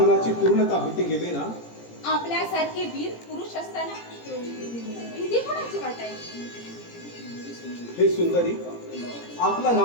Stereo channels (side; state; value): right; late; 17 ms